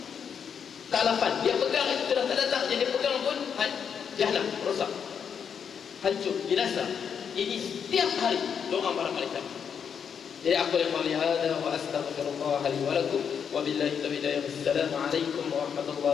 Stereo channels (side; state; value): right; quieter; 7.3 dB